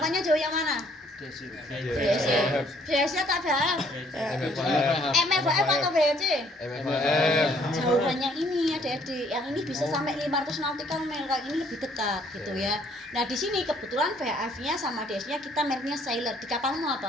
jauh yang mana? DSC. VSC atau VF? MF HF atau VC? MFM. Jauhannya ini adik-adik, yang ini bisa sampai 500 nautical mile, kalau ini lebih dekat gitu ya. Nah, di sini kebetulan VF-nya sama DS-nya kita mereknya Sailor. Di kapalmu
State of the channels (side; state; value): both; normal; correlation 0.63